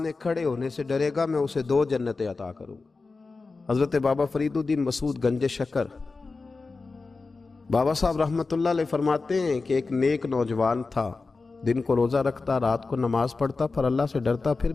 کھڑے ہونے سے ڈرے گا میں اسے 2 جنتیں عطا کروں۔ حضرت بابا فرید الدین مسعود گنج شکر بابا صاحب رحمت اللہ علیہ فرماتے ہیں کہ ایک نیک نوجوان تھا، دن کو روزہ رکھتا، رات کو نماز پڑھتا، پر اللہ سے ڈرتا پھر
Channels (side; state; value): right; quieter; 4.0 dB